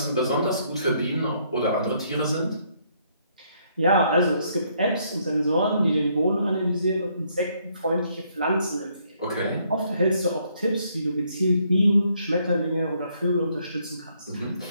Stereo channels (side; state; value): both; inverted; correlation -0.70